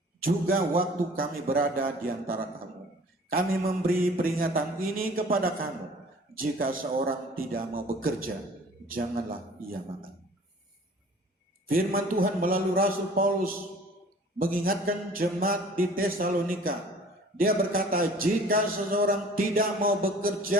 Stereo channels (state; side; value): normal; both; correlation 0.49